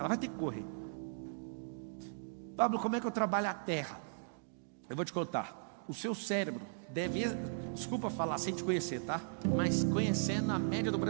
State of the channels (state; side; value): silent; left; digital silence